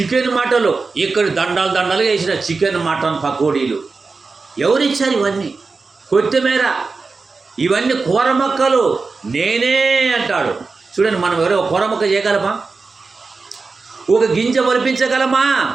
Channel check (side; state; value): left; quieter; 4.2 dB